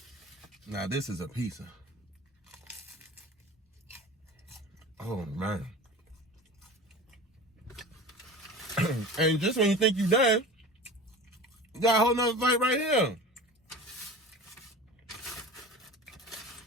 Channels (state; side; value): normal; both; correlation 0.35